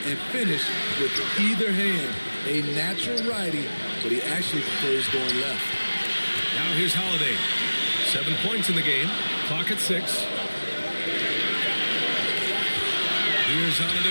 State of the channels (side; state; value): both; inverted; correlation -1.00